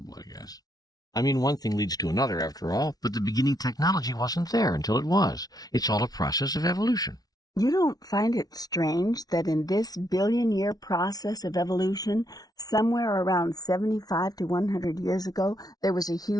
I guess. I mean, one thing leads to another, after all, but the beginning technology wasn't there until it was. It's all a process of evolution. You don't find it strange that in this billion-year process of evolution, somewhere around 75 to 100 years ago, there was a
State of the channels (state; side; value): late; right; 0.19 ms